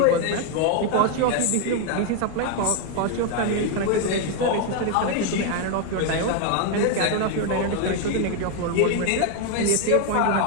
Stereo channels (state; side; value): different; both; correlation 0.01